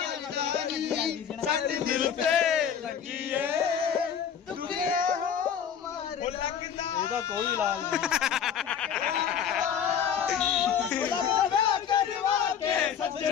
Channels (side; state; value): right; quieter; 8.1 dB